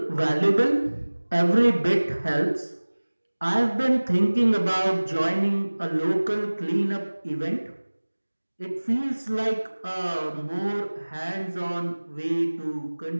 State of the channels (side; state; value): both; inverted; correlation -1.00